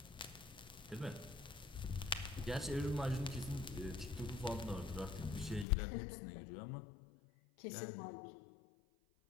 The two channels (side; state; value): right; drops out; at 5.7 s